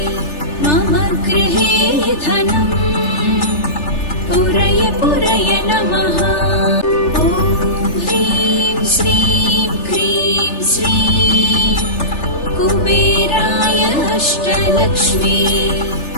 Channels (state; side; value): late; right; 3.3 ms